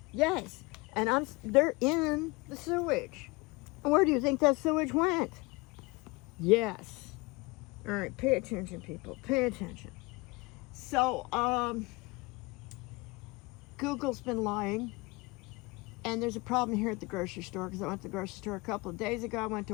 Yes, and they're in the sewage. Where do you think that sewage went? Yes. All right, pay attention, people. Pay attention. So, Google's been lying. And there's a problem here at the grocery store because I went to the grocery store a couple of days ago. I went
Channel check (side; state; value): right; quieter; 24.8 dB